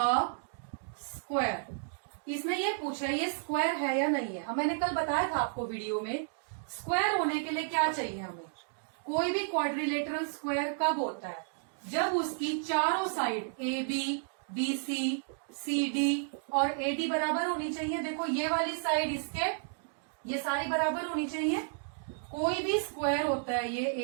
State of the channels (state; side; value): silent; left; digital silence